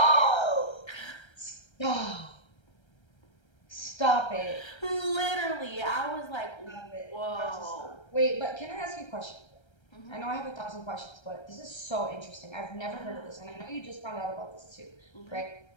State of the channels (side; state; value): right; late; 1.3 ms